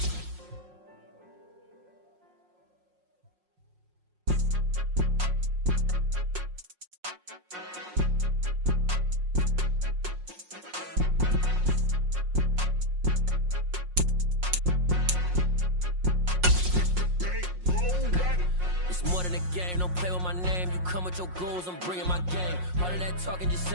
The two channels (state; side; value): late; left; 5.5 ms